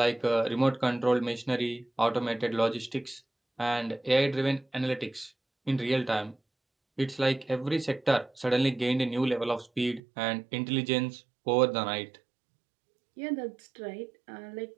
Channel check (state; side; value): drops out; left; at 10.0 s